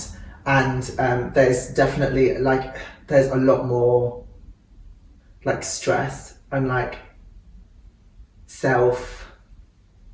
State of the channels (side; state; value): both; identical; correlation 1.00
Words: And there's definitely there's a lot more like stress and like self